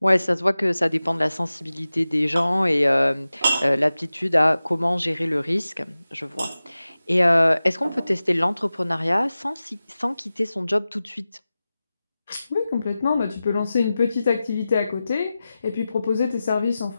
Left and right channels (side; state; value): both; inverted; correlation -0.95